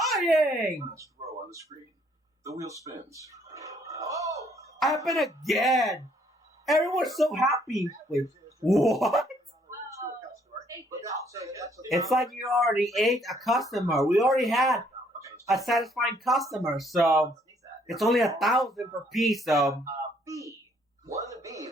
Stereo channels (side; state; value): both; normal; correlation 0.66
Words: Last row on the screen. The wheel spins. Oh! Happen again. Everyone's so happy. Wait, what? It's like you already ate a customer. We already had a satisfying customer, so it's only 1,000 per piece. So B. 1B